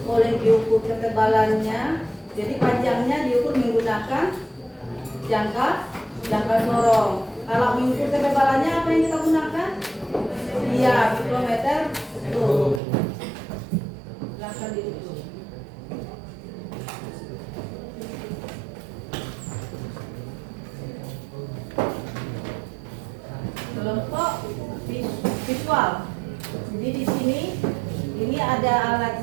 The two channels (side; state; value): left; drops out; at 12.8 s